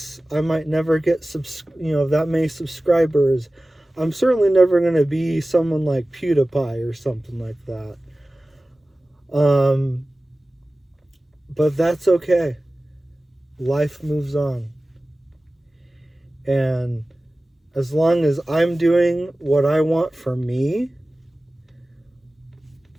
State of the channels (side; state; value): both; normal; correlation 0.97